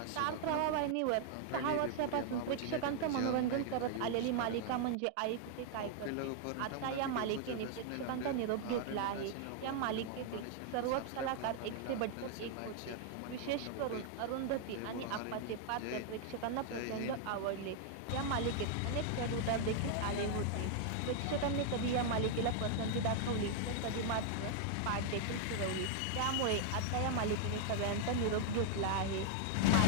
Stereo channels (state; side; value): different; both; correlation 0.00